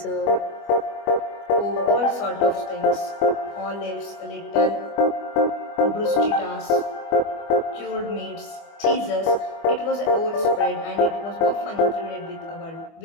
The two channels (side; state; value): right; late; 25 ms